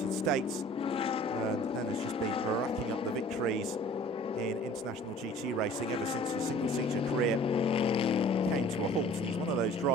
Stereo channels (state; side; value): normal; both; correlation 0.49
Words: States, and then has just been racking up the victories in international GT racing ever since his single-seater career came to a halt. And he's one of those